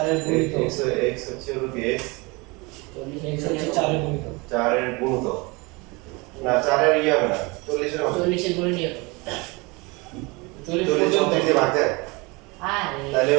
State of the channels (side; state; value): left; quieter; 26.3 dB